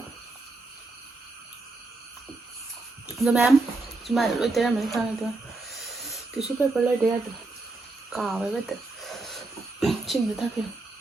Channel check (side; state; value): left; quieter; 3.3 dB